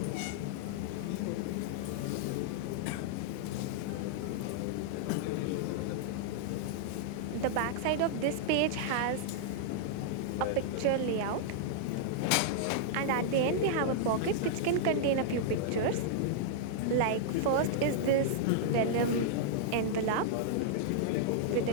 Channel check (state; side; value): different; both; correlation -0.01